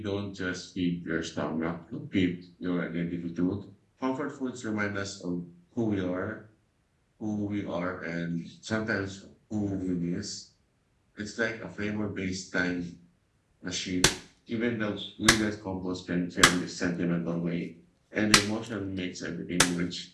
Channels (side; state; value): both; identical; correlation 1.00